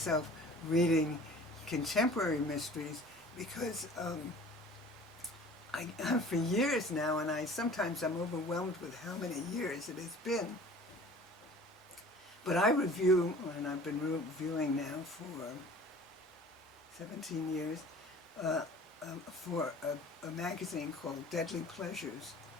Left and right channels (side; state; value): both; normal; correlation 0.45